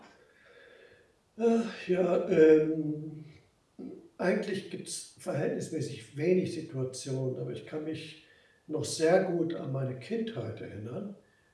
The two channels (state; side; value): identical; both; correlation 1.00